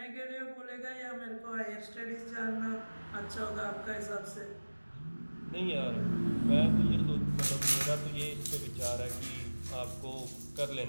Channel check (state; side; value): inverted; both; correlation -1.00